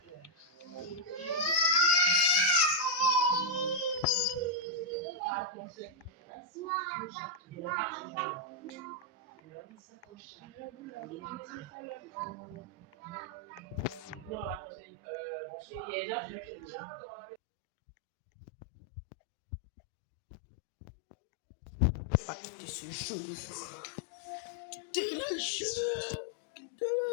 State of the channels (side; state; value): right; drops out; at 17.4 s